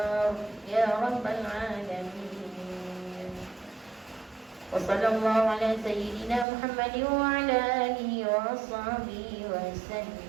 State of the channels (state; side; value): drops out; left; at 6.5 s